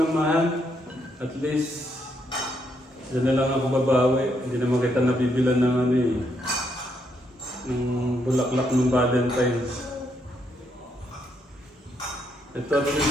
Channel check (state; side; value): normal; both; correlation 0.76